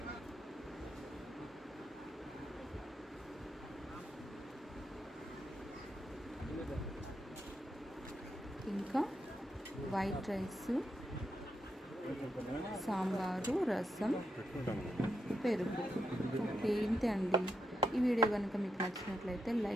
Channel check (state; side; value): normal; both; correlation 0.84